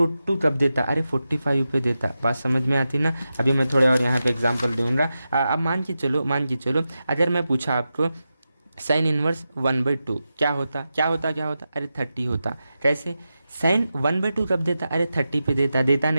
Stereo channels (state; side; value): inverted; both; correlation -0.91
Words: कब देता, अरे 45 पे देता। बात समझ में आती ना। अभी मैं थोड़े और यहाँ पे एग्जांपल दूंगा। अब मान के चलो अगर मैं पूछा आपको साइन इनवर्स 1/2 क्या होता, अरे 30 होता। कैसे, साइन 1/2 कब देता, अरे 30 पे देता। देता